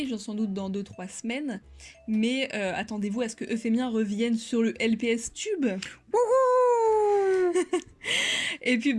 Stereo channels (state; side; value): identical; both; correlation 1.00